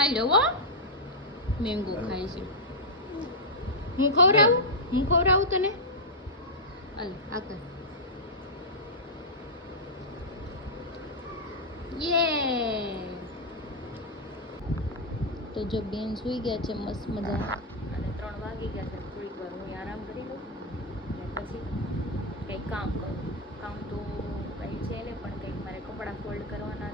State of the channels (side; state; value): both; normal; correlation -0.05